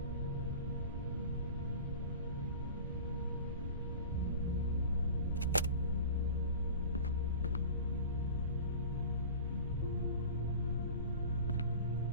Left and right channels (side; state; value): both; inverted; correlation -0.37